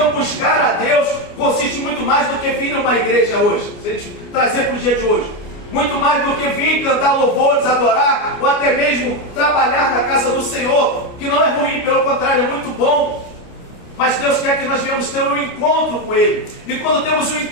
buscar a Deus consiste muito mais do que vir numa igreja hoje, se a gente trazer para o dia de hoje, muito mais do que vir cantar louvores, adorar, ou até mesmo trabalhar na casa do Senhor, que não é ruim, pelo contrário, é muito bom. Mas Deus quer que nós venhamos ter um encontro com Ele. E quando temos um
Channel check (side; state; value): right; late; 29 ms